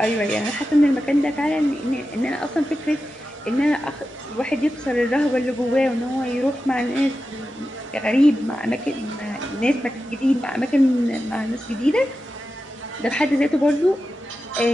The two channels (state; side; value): normal; both; correlation 0.92